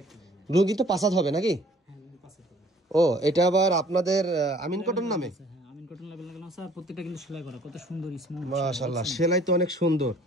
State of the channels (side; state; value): both; normal; correlation 0.55